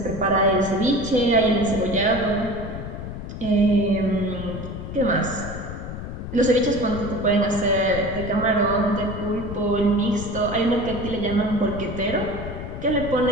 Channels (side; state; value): left; noise; rumble, 8 dB below the sound